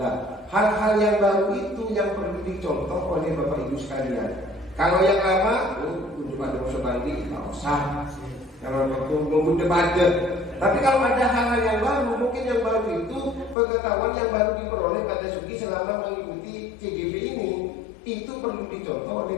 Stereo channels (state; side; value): drops out; right; at 13.6 s